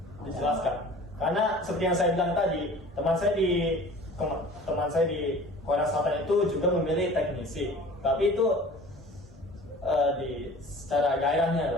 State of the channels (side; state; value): both; normal; correlation 0.44